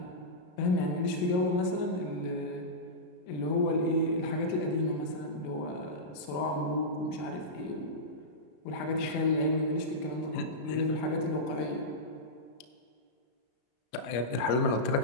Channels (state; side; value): late; right; 33 ms